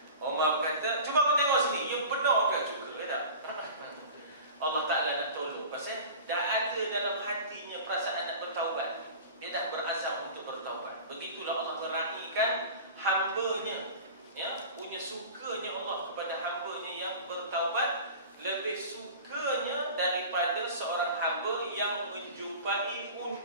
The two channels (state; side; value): inverted; both; correlation -0.37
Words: Umar berkata, cuba kau tengok sini, you benar ke cuka, ya tak? Allah Ta'ala nak tolong. Pasal dah ada dalam hatinya perasaan nak bertaubat. Dia dah berazam untuk bertaubat. Begitulah Allah meraihkan hamba-Nya, ya, punya sukanya Allah kepada hamba-Nya yang bertaubat, lebih sukanya daripada seorang hamba yang menjumpai